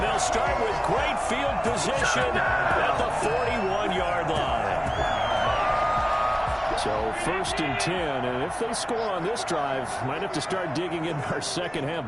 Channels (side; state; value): both; identical; correlation 1.00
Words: they'll start with great field position at the 41-yard line. So 1st and 10, and if they score on this drive, might have to start digging in our second